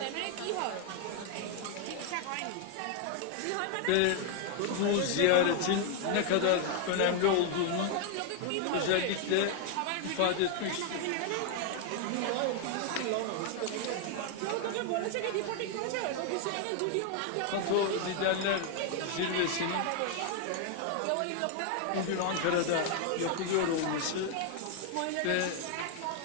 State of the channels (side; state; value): both; different; correlation 0.00